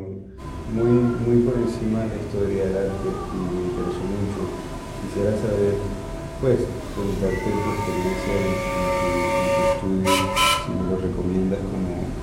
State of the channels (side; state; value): both; identical; correlation 1.00